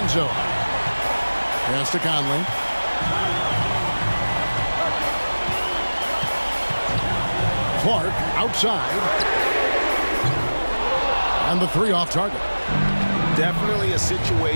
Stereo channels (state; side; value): inverted; both; correlation -1.00